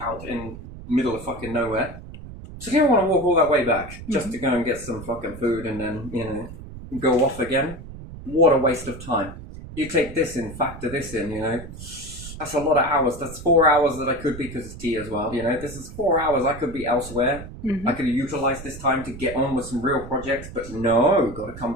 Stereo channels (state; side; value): noise; right; rumble, 13 dB below the sound